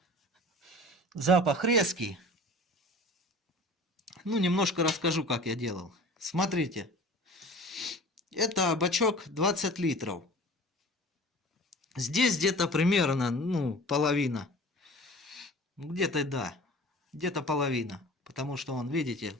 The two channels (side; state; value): both; normal; correlation 0.42